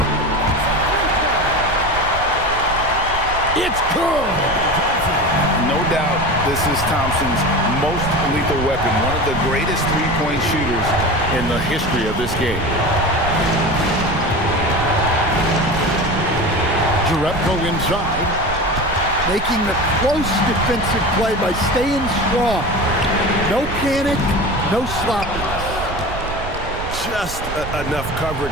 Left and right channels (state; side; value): noise; right; rumble, 9 dB below the sound